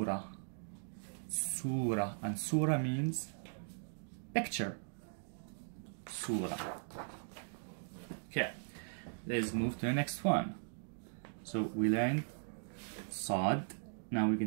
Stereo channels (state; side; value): silent; left; digital silence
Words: surah, and surah means picture. Surah. Okay. Let's move to the next one. So we learned sod. Now we're